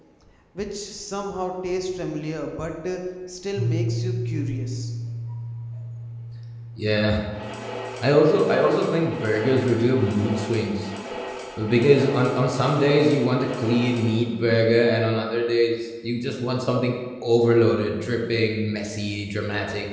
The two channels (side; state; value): both; identical; correlation 1.00